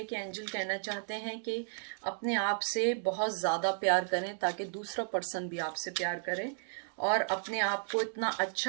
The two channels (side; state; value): left; silent; digital silence